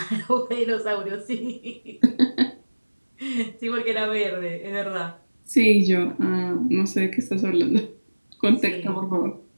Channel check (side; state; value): both; inverted; correlation -1.00